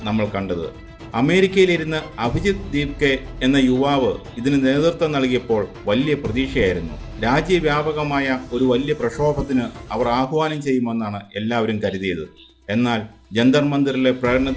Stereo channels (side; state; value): both; identical; correlation 1.00